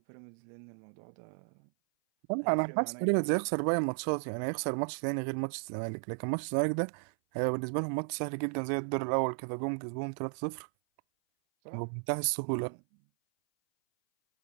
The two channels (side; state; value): left; silent; 55 dB below the other